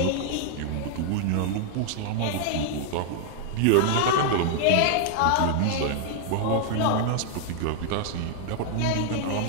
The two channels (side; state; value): both; different; correlation 0.00